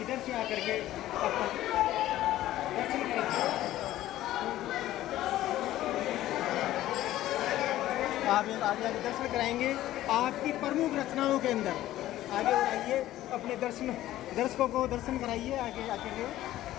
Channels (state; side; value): quieter; right; 14.3 dB